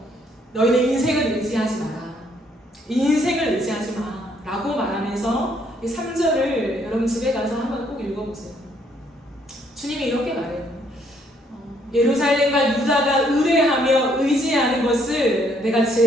너희는 인생을 의지하지 마라. 인생을 의지하지 마. 라고 말하면서 3절을 여러분 집에 가서 한번 꼭 읽어보세요. 주님이 이렇게 말해요. 예루살렘과 유다가 의뢰하며 의지하는 것을 내가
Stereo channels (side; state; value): both; normal; correlation 0.68